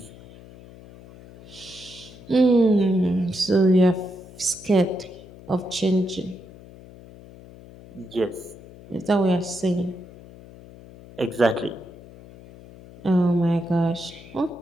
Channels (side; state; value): left; noise; hum, 19 dB below the sound